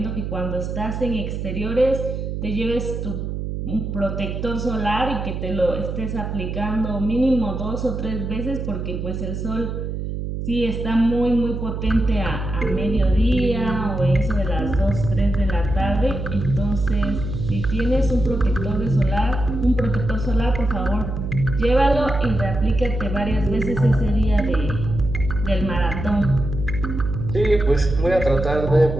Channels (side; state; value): right; noise; hum, 5 dB below the sound